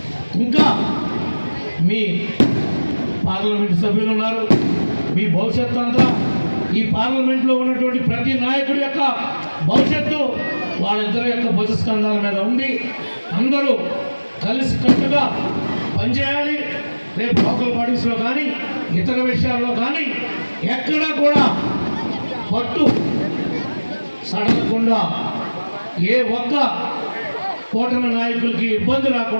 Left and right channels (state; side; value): inverted; both; correlation -1.00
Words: ఇంకా మీ పార్లమెంట్ సభ్యులు ఉన్నారు. మీ భవిష్యత్తు అంతా ఈ పార్లమెంట్లో ఉన్నటువంటి ప్రతి నాయకుడి యొక్క భవిష్యత్తు వాళ్ళిద్దరి యొక్క భుజస్కంధాల మీద ఉంది. అందరూ కలిసి కట్టుగా పనిచేయాలి. రేపు లోకల్ బాడీస్లో కానీ ఇతర విషయాల్లో కానీ ఎక్కడా కూడా పట్టు సడలకుండా, ఏ ఒక్క కూటమి నాయకులకి ఇబ్బంది